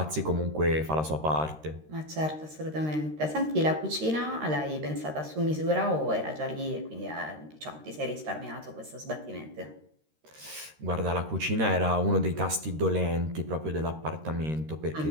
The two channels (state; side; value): late; left; 13 ms